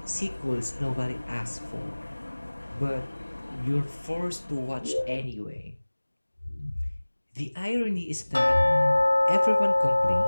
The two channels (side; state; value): both; inverted; correlation -1.00